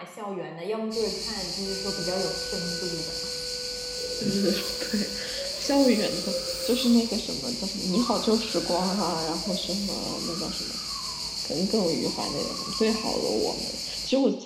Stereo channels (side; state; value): both; identical; correlation 1.00